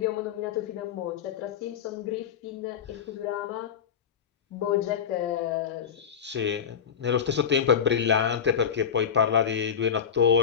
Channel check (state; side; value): quieter; right; 7.5 dB